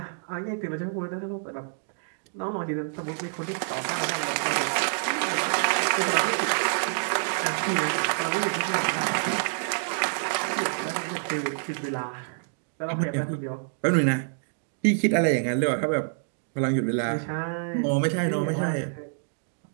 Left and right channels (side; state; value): left; silent; digital silence